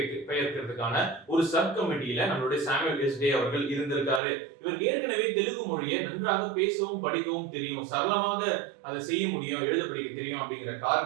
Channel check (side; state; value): left; drops out; at 4.2 s